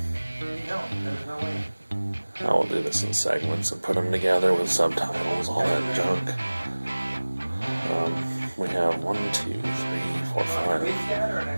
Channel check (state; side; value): inverted; both; correlation -1.00